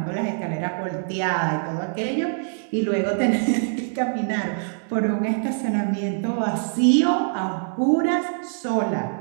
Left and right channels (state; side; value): silent; left; digital silence